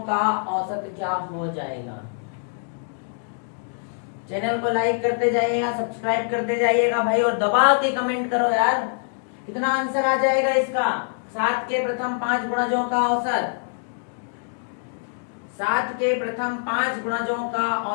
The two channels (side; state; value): right; silent; digital silence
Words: का औसत क्या हो जाएगा। चैनल को लाइक करते जाइएगा, सब्सक्राइब करते जाइएगा भाई, और दबा के कमेंट करो यार, कितना आंसर आ जाएगा इसका। 7 के प्रथम 5 गुणजों का औसत, 7 के प्रथम 5 गुणजों का